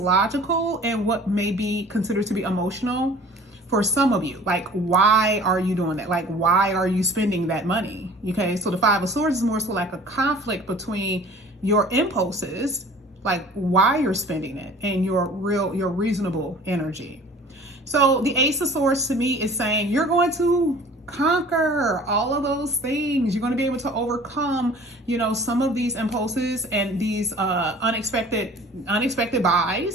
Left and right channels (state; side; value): normal; both; correlation 0.47